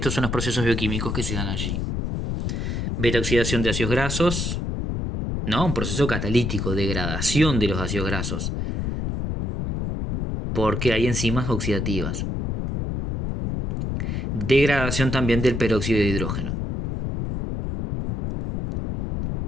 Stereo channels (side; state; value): left; noise; rumble, 2 dB below the sound